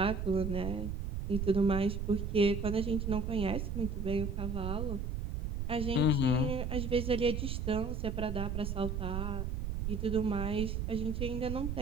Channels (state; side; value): noise; right; rumble, 2 dB below the sound